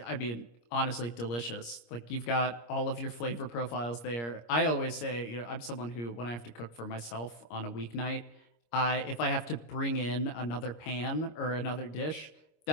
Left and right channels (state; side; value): late; right; 25 ms